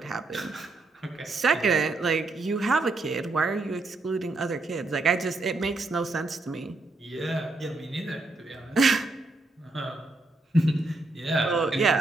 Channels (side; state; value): left; quieter; 3.2 dB